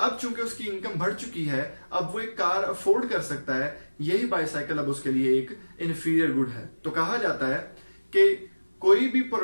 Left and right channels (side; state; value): both; inverted; correlation -1.00